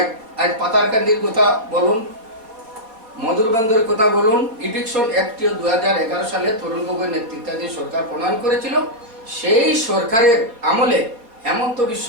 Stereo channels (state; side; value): late; left; 4.3 ms